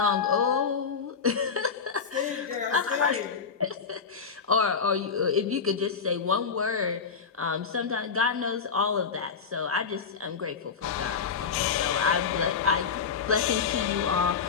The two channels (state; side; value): quieter; right; 5.9 dB